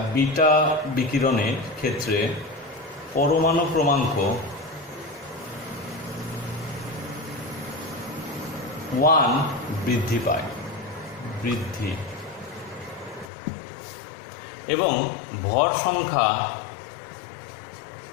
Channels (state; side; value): drops out; right; at 13.3 s